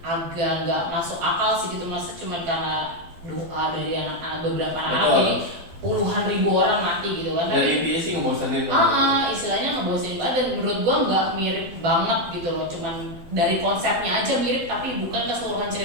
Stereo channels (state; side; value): late; left; 12 ms